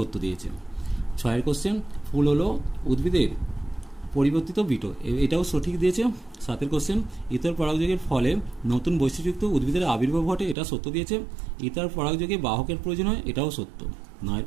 দিয়েছে। 6 কোশ্চেন, ফুল হলো উদ্ভিদের পরিবর্তিত বিটো। এটাও সঠিক দিয়েছে। 7 কোশ্চেন, ইতর পরাগযোগের ফলে নতুন বৈশিষ্ট্যযুক্ত উদ্ভিদের আবির্ভাব ঘটে। এটা সত্য দিয়েছে। ইতর পরাগযোগে বাহকের প্রয়োজন হয়। এটাও সত্য। 9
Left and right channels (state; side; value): drops out; left; at 10.6 s